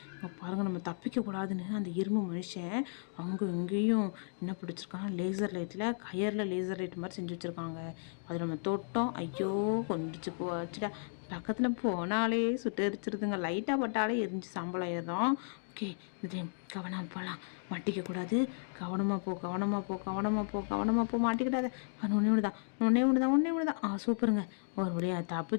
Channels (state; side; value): silent; right; digital silence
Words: பாருங்கள், நம்ம தப்பிக்கக்கூடாதுன்னு அந்த இரும்பு மனுஷன் அவங்க எங்கேயும் என்ன பிடிச்சிருக்காங்க, லேசர் லைட்டில் கயரில் லேசர் லைட் மாதிரி செஞ்சு வச்சுருக்காங்க. அது நம்ம தொட்டோம். ஐயோ, கொண்டுச்சு போச்சுடா. பக்கத்தில் போனாலே சுட்டு எரிச்சிருதுங்க. லைட்டாக பட்டாலே எரிஞ்சு சாம்பல் ஆயிடும். ஓகே, இந்த டைம் கவனமாக போகலாம். மாட்டிக்கக்கூடாது. கவனமாக போ மாட்டிக்கிட்டாத. ஒன்றே ஒன்று தான். சூப்பருங்க. ஒரு வழியாக